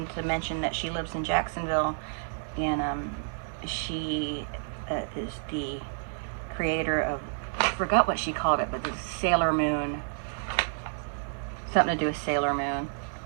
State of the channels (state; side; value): silent; left; digital silence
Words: to mention that she lives in Jacksonville, and she is the creator of, I forgot what she called it, but the Sailor Moon, something to do with Sailor Moon.